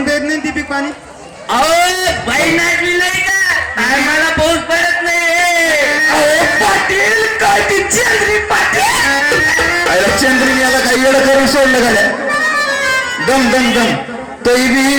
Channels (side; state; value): both; identical; correlation 1.00